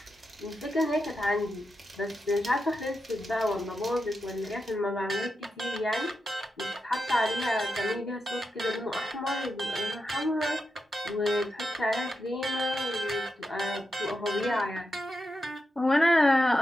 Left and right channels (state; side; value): normal; both; correlation 0.88